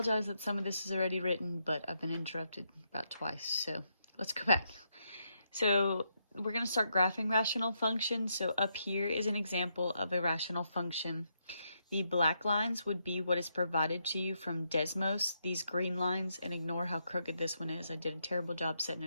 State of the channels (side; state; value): both; inverted; correlation -0.80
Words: that some of this is already written, but I've been interrupted about twice, so let's go back. So, we're going to start graphing rational functions. So up here is an example of a rational function. The black lines would be what is provided to you from Desmos. These green lines, and ignore how crooked this one is, I did a terrible job setting